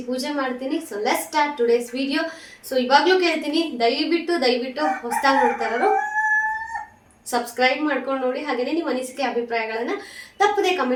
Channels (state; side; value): identical; both; correlation 1.00